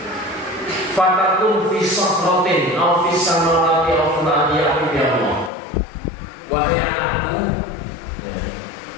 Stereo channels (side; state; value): right; drops out; at 5.5 s